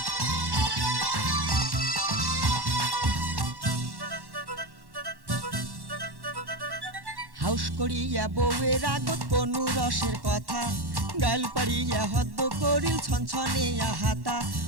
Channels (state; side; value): late; left; 1.1 ms